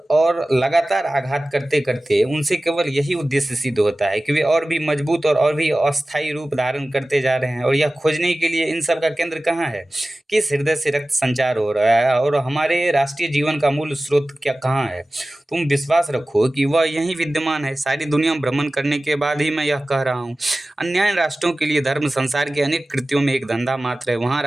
और लगातार आघात करते करते उनसे केवल यही उद्देश्य सिद्ध होता है कि वे और भी मजबूत और भी अस्थायी रूप धारण करते जा रहे हैं। और यह खोजने के लिए इन सब का केंद्र कहाँ है? किस हृदय से रक्त संचार हो रहा है और हमारे राष्ट्रीय जीवन का मूल स्रोत क्या कहाँ है? तुम विश्वास रखो कि वह यहीं विद्यमान है। सारी दुनिया भ्रमण करने के बाद ही मैं यह कह रहा हूँ। अन्य राष्ट्रों के लिए धर्म संसार के अनेक कृत्यों में एक धंधा मात्र है। वहाँ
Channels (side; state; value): both; normal; correlation 0.96